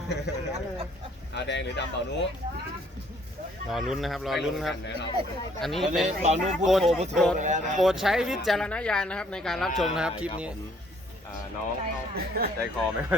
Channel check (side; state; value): both; normal; correlation 0.63